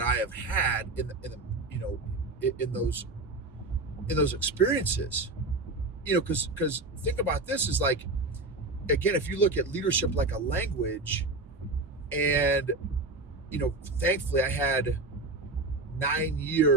have had in those experiences. Because think about this, is like, again, if you look at leadership like a language, and thankfully I had 9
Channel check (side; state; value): left; quieter; 3.1 dB